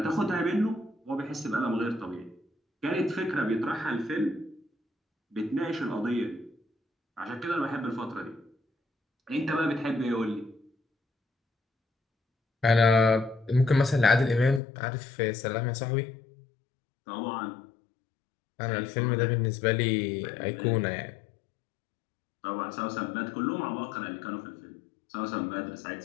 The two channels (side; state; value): right; drops out; at 14.6 s